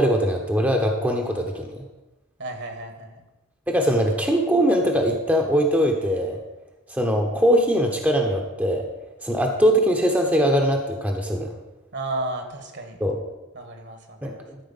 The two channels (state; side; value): normal; both; correlation 0.55